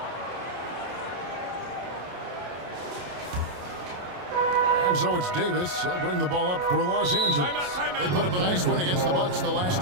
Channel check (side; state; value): left; late; 28 ms